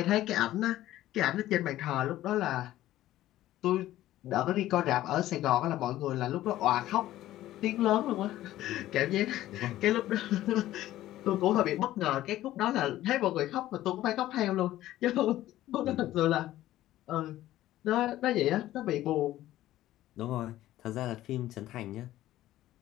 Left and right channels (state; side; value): quieter; right; 14.5 dB